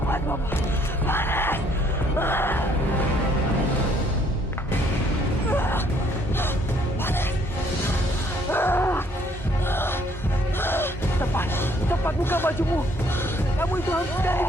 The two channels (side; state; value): both; normal; correlation 0.64